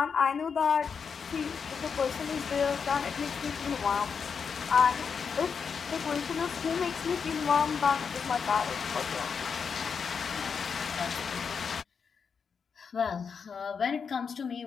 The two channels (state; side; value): quieter; right; 6.1 dB